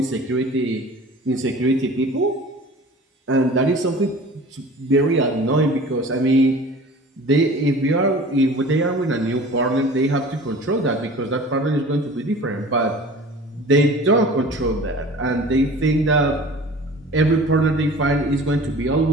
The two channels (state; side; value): normal; both; correlation 0.42